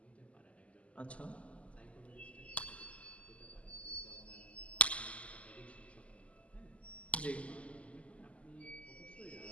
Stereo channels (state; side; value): late; right; 0.063 ms